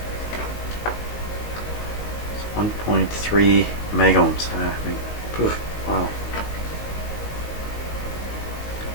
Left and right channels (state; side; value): late; right; 19 ms